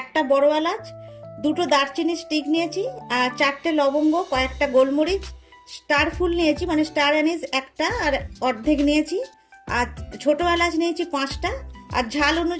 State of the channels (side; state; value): both; identical; correlation 1.00